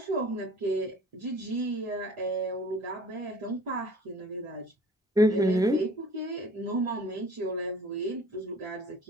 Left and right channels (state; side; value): normal; both; correlation 0.48